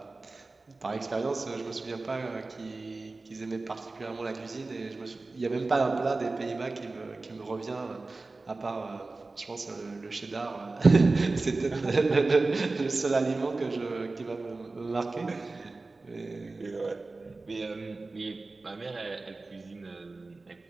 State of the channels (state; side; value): quieter; left; 3.5 dB